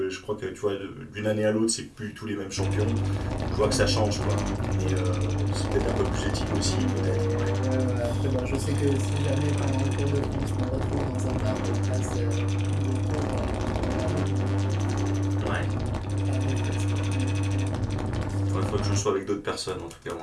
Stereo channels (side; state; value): both; identical; correlation 1.00